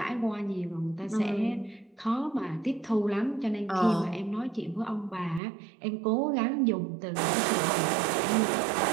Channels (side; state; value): left; drops out; at 5.4 s